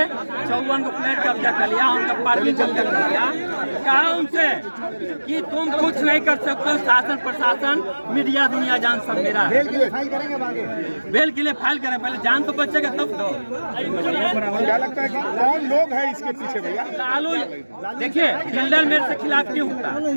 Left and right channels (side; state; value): both; inverted; correlation -1.00